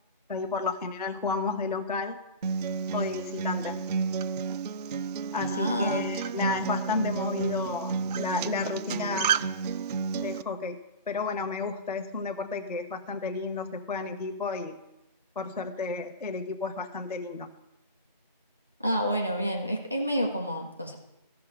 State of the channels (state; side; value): inverted; both; correlation -0.32